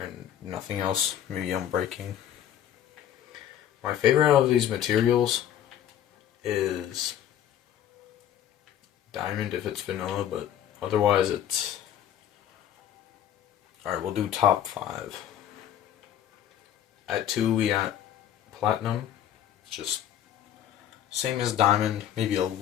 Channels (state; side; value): quieter; right; 10.6 dB